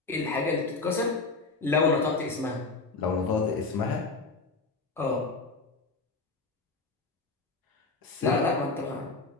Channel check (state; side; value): quieter; right; 3.8 dB